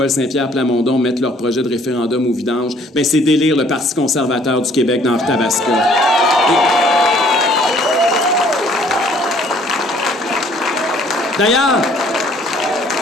Saint-Pierre Plamondon mettent leur projet de référendum au vidange, ben c'est d'élire le Parti conservateur du Québec dans Arthabasca. D'ailleurs,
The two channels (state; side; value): normal; both; correlation 0.59